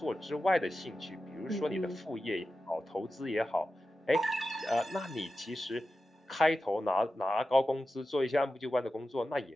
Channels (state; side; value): normal; both; correlation 0.92